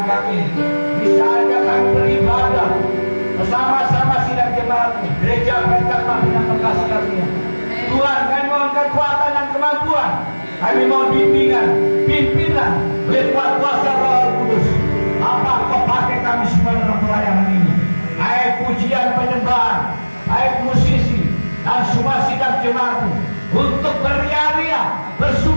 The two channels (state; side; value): inverted; both; correlation -1.00